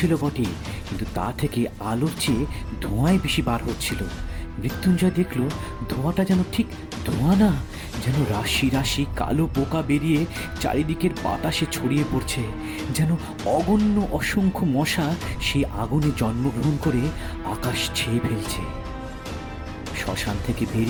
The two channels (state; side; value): identical; both; correlation 1.00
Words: বটে, কিন্তু তা থেকে আলোর চেয়ে ধোঁয়াই বেশি বার হচ্ছিল। মৃত্যুঞ্জয় দেখল ধোঁয়াটা যেন ঠিক ধোঁয়া না, যেন রাশি রাশি কালো পোকা বেরিয়ে চারিদিকের বাতাসে ছড়িয়ে পড়ছে। যেন অগণ্য অসংখ্য মশা সেই আগুনে জন্মগ্রহণ করে আকাশ ছেয়ে ফেলছে। শ্মশান থেকে